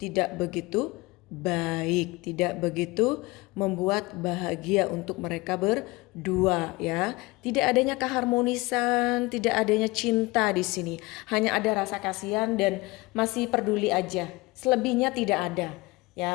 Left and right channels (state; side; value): quieter; right; 22.7 dB